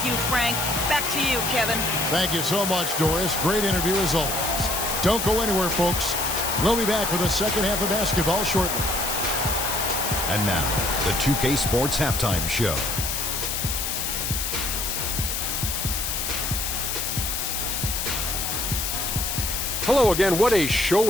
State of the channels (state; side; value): noise; left; hiss, 1 dB below the sound